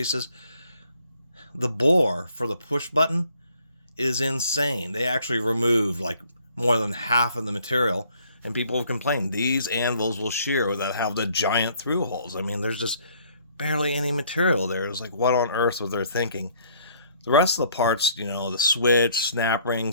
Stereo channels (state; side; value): inverted; both; correlation -0.62